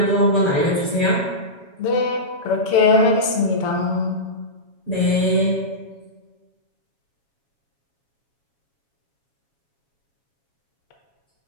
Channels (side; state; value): right; late; 7.2 ms